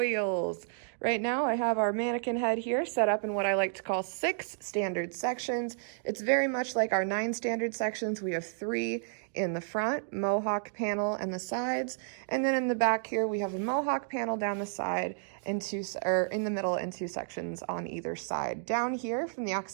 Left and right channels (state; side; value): silent; left; digital silence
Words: Right now I have our mannequin head here set up in what I like to call 6 standard sections. It's very much like our 9 standard sections. We have 3 in the front, mohawk panel and the sides, and then in the back here we have a mohawk panel down the side and in the middle and 2 sections on either side. Down here from the